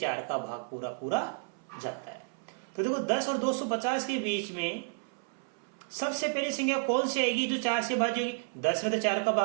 का भाग पूरा पूरा जाता है। तो देखो 10 और 250 के बीच में सबसे पहली संख्या कौन सी आएगी जो 4 से भाज्य होगी? 10 में तो 4 का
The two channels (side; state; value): left; silent; 57 dB below the other